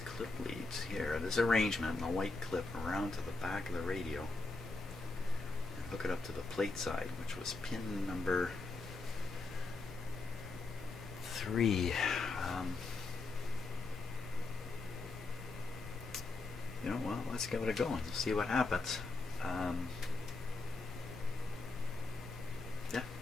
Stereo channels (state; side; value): quieter; right; 3.5 dB